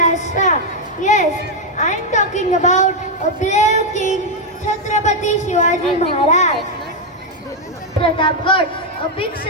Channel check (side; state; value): both; normal; correlation 0.01